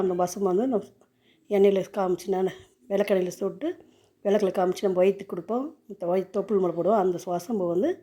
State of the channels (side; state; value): both; identical; correlation 1.00